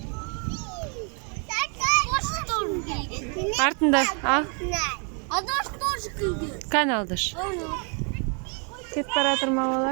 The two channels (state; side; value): quieter; left; 38.4 dB